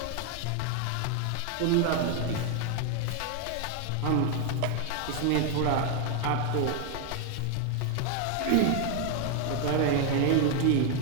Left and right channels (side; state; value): both; different; correlation 0.01